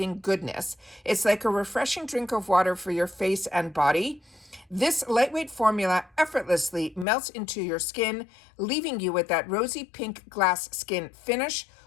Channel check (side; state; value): right; drops out; at 7.1 s